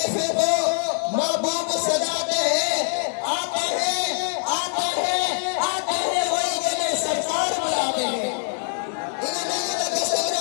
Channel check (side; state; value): right; silent; 58 dB below the other